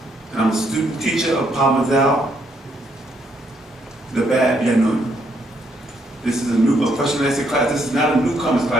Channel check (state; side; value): normal; both; correlation 0.73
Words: and I'm a student teacher of Parmazal, the Bad Yanun. This is a question and answer class. This is not a newcomers